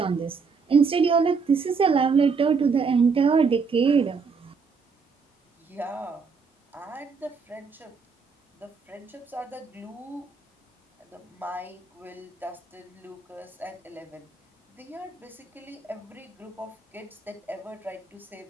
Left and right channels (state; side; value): quieter; left; 5.2 dB